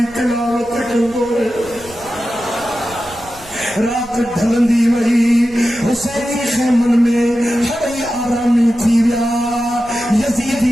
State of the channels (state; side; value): noise; right; rumble, 22 dB below the sound